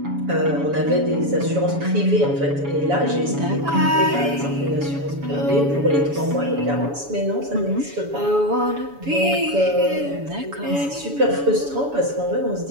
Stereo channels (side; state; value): left; late; 7.1 ms